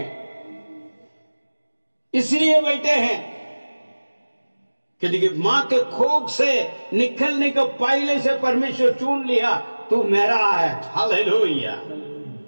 इसलिए बैठे हैं क्योंकि मां के कोख से निकलने के पहले से परमेश्वर चुन लिया, तू मेरा है। हालेलुया,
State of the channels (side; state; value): both; inverted; correlation -1.00